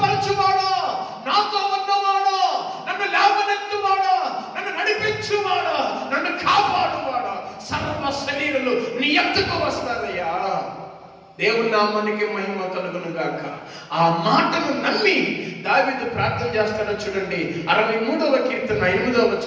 నాతో ఉన్నవాడా, నన్ను లేవనెత్తువాడా, నన్ను నడిపించువాడా, నన్ను కాపాడువాడా. సర్వ శరీరులు నీ ఎత్తుకు వస్తారయ్యా. దేవుని నామానికి మహిమ కలుగును గాక. ఆ మాటను నమ్మి దావీదు ప్రార్థన చేస్తాడో చూడండి. 63వ కీర్తన 8వ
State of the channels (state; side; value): identical; both; correlation 1.00